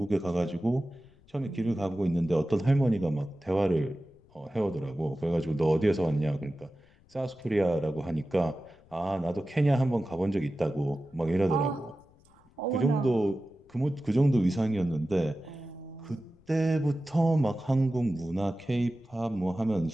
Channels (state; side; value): noise; left; rumble, 29 dB below the sound